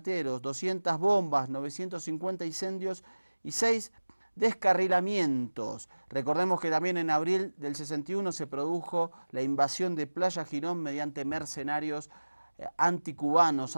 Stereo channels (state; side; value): inverted; both; correlation -1.00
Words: 200 bombas, 950 incendios y 6 descarrilamientos. Recordemos que también en abril del 61 se produjo la invasión de Playa Girón mediante mercenarios anticubanos,